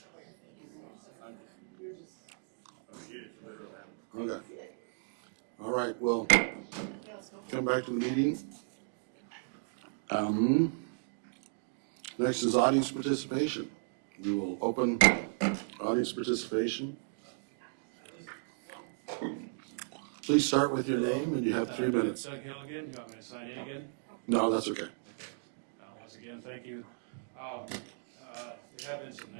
Okay. All right, we'll come back to the meeting. Next is audience participation. We will open audience participation. Please start with your name, and you have 3 minutes. Doug Hill again, you want me to sign in again? No, that's okay. Once again, thank you. There have been some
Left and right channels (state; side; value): silent; left; digital silence